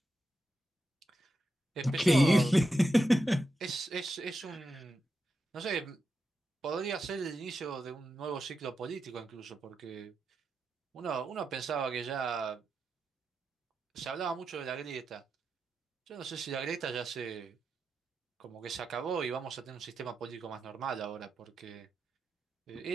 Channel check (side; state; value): both; normal; correlation 0.88